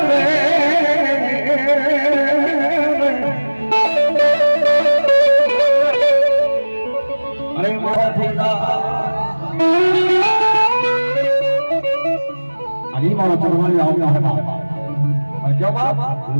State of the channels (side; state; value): both; inverted; correlation -1.00